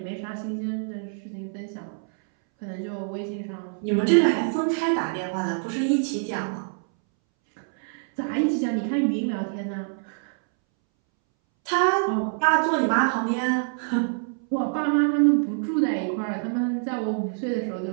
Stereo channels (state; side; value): silent; left; 61 dB below the other